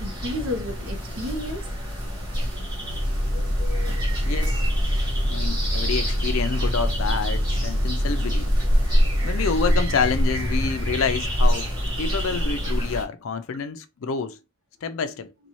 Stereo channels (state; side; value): normal; both; correlation 0.69